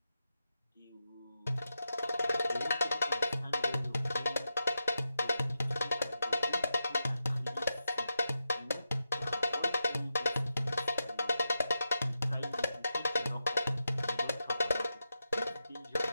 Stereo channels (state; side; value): inverted; both; correlation -0.88